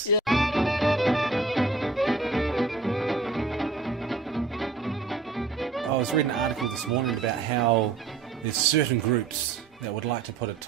Yeah. I was reading an article this morning about how there's certain groups that would like to put a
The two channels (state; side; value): quieter; left; 4.1 dB